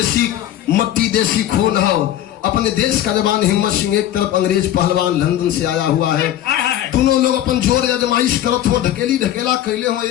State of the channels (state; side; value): quieter; right; 12.3 dB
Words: मट्टी देसी खून हो, अपने देश का जवान हिम्मत सिंह, एक तरफ अंग्रेज पहलवान लंदन से आया हुआ है। दोनों लोग अपन जोर आजमाइश करत हो, ढकेली ढकेला कैले हो।